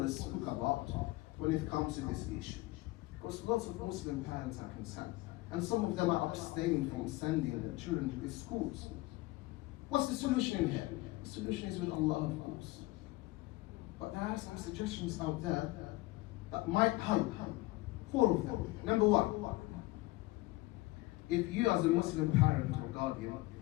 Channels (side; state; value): right; quieter; 20.1 dB